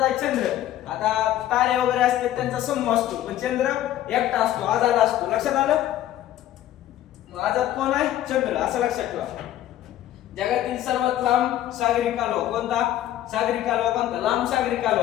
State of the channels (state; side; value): quieter; right; 12.9 dB